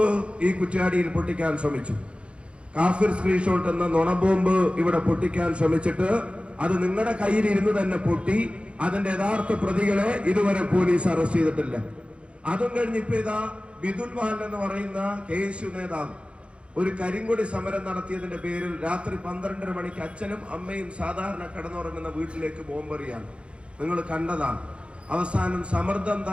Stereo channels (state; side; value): late; left; 0.058 ms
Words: ഈ കുറ്റ്യാടിയിൽ പൊട്ടിക്കാൻ ശ്രമിച്ചു. കാഫിർ സ്ക്രീൻഷോട്ട് എന്ന നുണബോംബ് ഇവിടെ പൊട്ടിക്കാൻ ശ്രമിച്ചിട്ട് അത് നിങ്ങളുടെ കയ്യിൽ ഇരുന്ന് തന്നെ പൊട്ടി. അതിന്റെ യഥാർത്ഥ പ്രതികളെ ഇതുവരെ പോലീസ് അറസ്റ്റ് ചെയ്തിട്ടില്ല. അതും കഴിഞ്ഞ് ഇപ്പൊ ഇതാ ബിദുൽ വാൻ എന്ന് പറയുന്ന KSU നേതാവ് ഒരു കരിങ്കൊടി സമരം നടത്തിയതിന്റെ പേരിൽ രാത്രി 12:30 മണിക്ക് അച്ഛനും അമ്മയും സാധാരണ കിടന്നുറങ്ങുന്ന വീട്ടിലേക്ക് ബോംബെറിയാണ്. നിങ്ങൾ കണ്ടതാണ്. അവസാനം സമ്മർദ്ദം